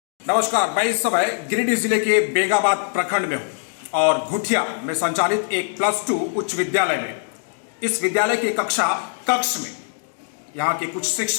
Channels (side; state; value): right; silent; 64 dB below the other